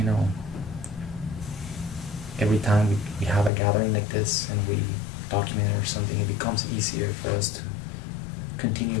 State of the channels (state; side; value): drops out; right; at 3.5 s